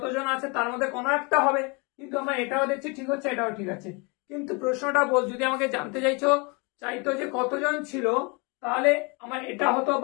আছে তার মধ্যে কোনো একটা হবে। কিন্তু আমরা এটাও দেখছি ঠিক হচ্ছে, এটাও ঠিক আছে। কিন্তু প্রশ্নটা যদি আমাকে জানতে চাইতো যে কতজন ছিল, তাহলে আমার এটা হতো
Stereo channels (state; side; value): quieter; right; 30.5 dB